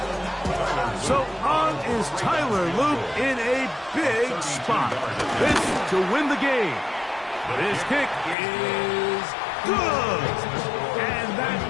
So on is Tyler Luke in a big spot. This to win the game. This kick is good. And that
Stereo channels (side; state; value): right; drops out; at 8.3 s